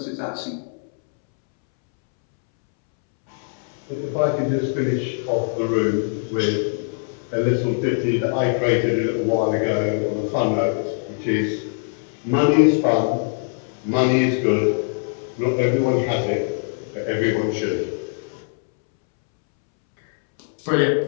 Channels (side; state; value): right; silent; 64 dB below the other